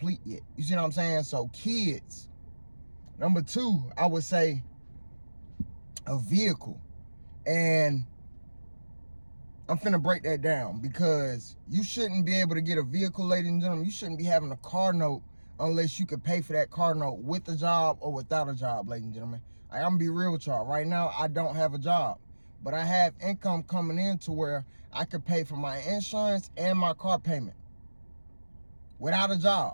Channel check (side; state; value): both; inverted; correlation -1.00